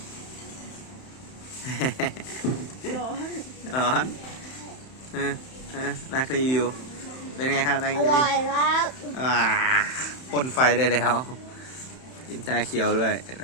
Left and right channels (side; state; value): right; late; 31 ms